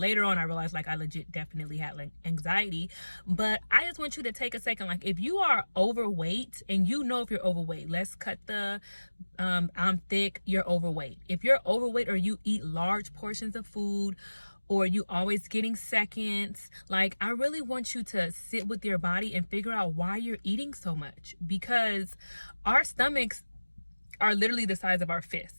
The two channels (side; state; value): both; inverted; correlation -1.00